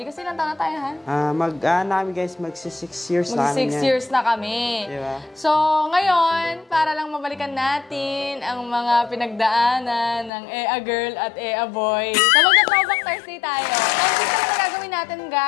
Kasi ilang taon na tayo, ha? Namin guys, magsi 6 years na. Mag 6 years na kami. Diba? So, ngayon, para lang mabalikan natin ang mga pinagdaanan ng Ea Girl at Ea Boy. So, magta-throwback Thursday tayo. So, dito na gagawin natin,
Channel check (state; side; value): drops out; right; at 10.3 s